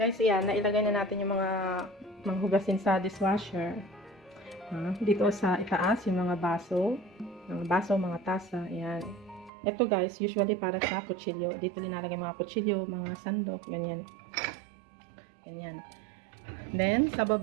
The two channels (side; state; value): left; drops out; at 9.5 s